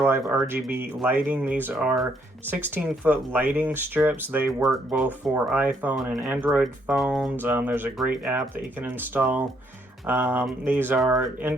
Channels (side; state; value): both; normal; correlation 0.71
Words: Life RGB lighting. These are 16-foot lighting strips. They work both for iPhone and Android phones. There's a great app that you can install. These are